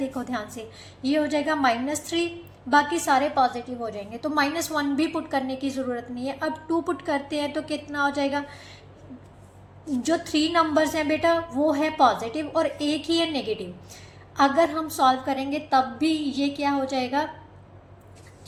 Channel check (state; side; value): identical; both; correlation 1.00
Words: ध्यान से, ये हो जाएगा -3, बाकी सारे पॉजिटिव हो जाएंगे, तो -1 भी पुट करने की ज़रूरत नहीं है। अब 2 पुट करते हैं तो कितना हो जाएगा, जो 3 नंबर्स हैं बेटा वो है पॉजिटिव और एक ही है नेगेटिव। अगर हम सॉल्व करेंगे तब भी ये क्या हो जाएगा,